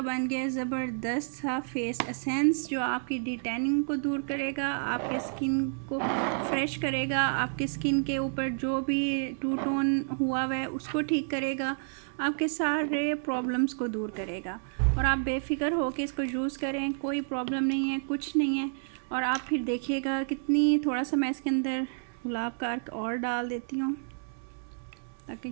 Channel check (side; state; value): left; silent; digital silence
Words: बन गया ज़बरदस्त सा फेस एसेंस, जो आपकी डिटैनिंग को दूर करेगा, आपके स्किन को फ्रेश करेगा, आपके स्किन के ऊपर जो भी टू टोन हुआ हुआ है उसको ठीक करेगा, आपके सारे प्रॉब्लम्स को दूर करेगा। और आप बेफिक्र हो के इसको यूज़ करें, कोई प्रॉब्लम नहीं है, कुछ नहीं है। और आप फिर देखिएगा कितनी, थोड़ा सा मैं इसके अंदर गुलाब का अर्क और डाल देती हूँ ताकि